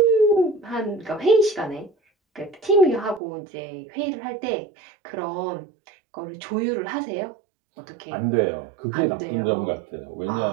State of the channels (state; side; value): drops out; left; at 3.2 s